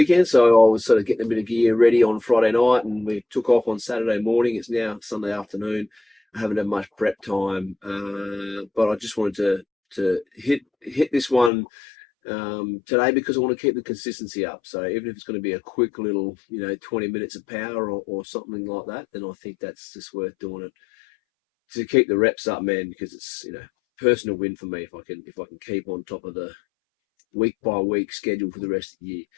so I was sort of getting a bit of gear ready on Friday night, and we took off on Saturday morning. It's now Sunday afternoon. I haven't had much prep time, but I just wanted to hit this one today because I want to keep the consistency up. So even if it's going to be a quick little, 20 minutes of power or something like that, then I think that's just worth doing it to keep the reps up, man. Because it's personal win for me if I can keep on top of the week by week schedule for the rest of the year.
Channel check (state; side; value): drops out; right; at 11.5 s